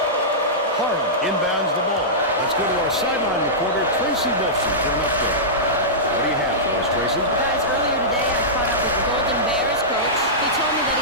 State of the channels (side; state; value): both; normal; correlation -0.15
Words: Harden inbounds the ball. Let's go to our sideline reporter, Tracy Wilson, for an update. What do you have for us, Tracy? Guys, earlier today I caught up with the Golden Bears coach. He told me that